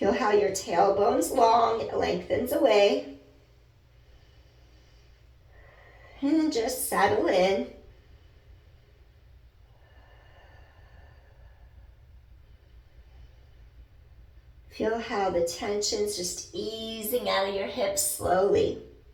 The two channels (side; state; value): both; identical; correlation 1.00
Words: how your tailbone's long, it lengthens away. And then just settle in. Feel how the tension's just easing out of your hips slowly.